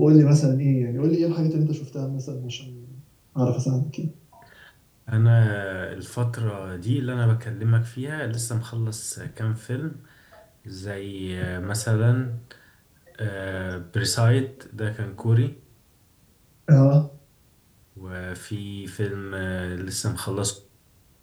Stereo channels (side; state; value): both; identical; correlation 1.00